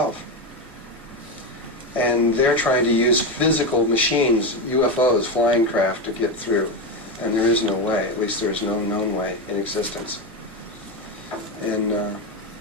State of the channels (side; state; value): both; normal; correlation 0.14